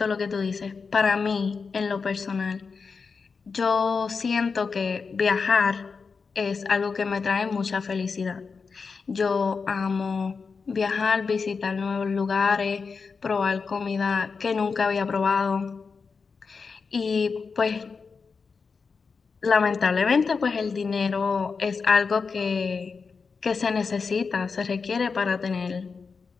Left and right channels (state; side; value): quieter; right; 5.0 dB